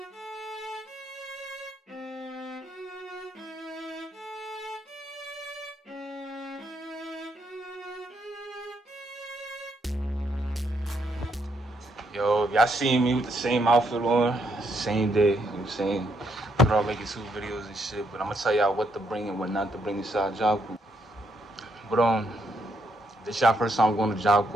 Yo, if y'all seen me with the same outfit on, same day, you know what I'm saying? We're all making 2 videos and shit, but I'm gonna tell y'all what to bring and what not to bring inside job course. But this y'all first time going to job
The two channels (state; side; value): normal; both; correlation 0.75